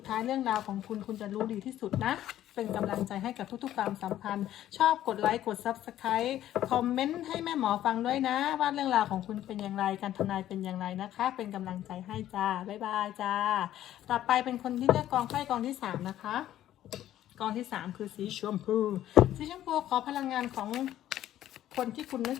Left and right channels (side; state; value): right; quieter; 12.6 dB